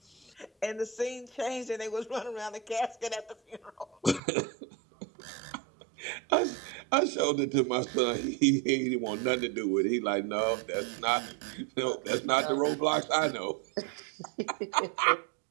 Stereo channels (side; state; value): left; drops out; at 4.2 s